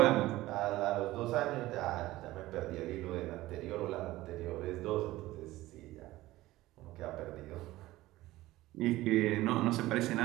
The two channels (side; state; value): left; quieter; 17.2 dB